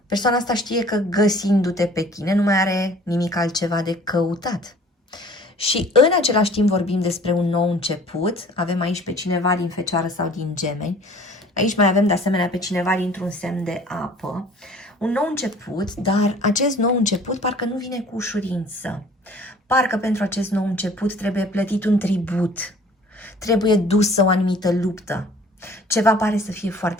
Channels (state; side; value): normal; both; correlation 0.50